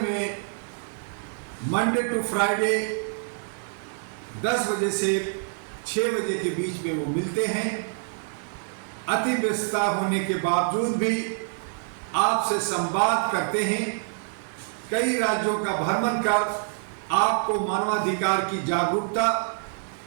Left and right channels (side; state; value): left; silent; 61 dB below the other